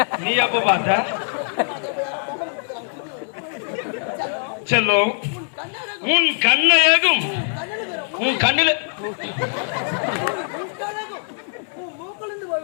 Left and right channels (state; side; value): silent; right; 62 dB below the other